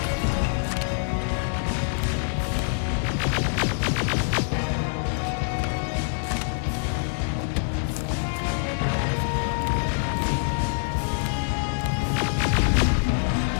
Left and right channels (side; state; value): right; silent; digital silence